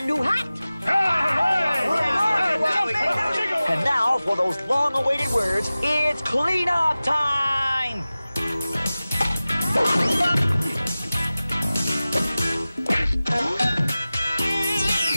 new hat? And now, for those long-awaited words, it's cleanup time!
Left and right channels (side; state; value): both; inverted; correlation -0.97